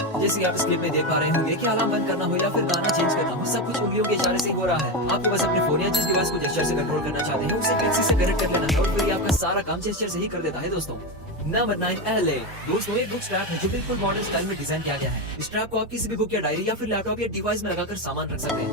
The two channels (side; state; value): both; normal; correlation 0.14